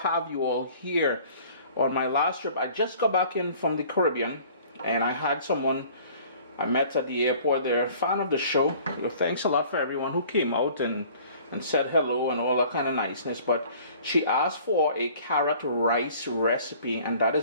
you all here. On my last trip, I just got back in from the Caribbean, and I had someone I met at the airport there, a fan of the show. Thanks a lot for everyone who came out and said hello and all that kind of niceness. But she asked for a carrot rice recipe, and that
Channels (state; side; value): inverted; both; correlation -0.51